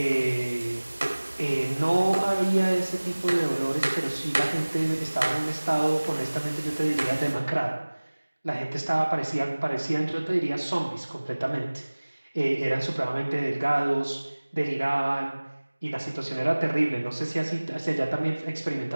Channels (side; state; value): both; inverted; correlation -1.00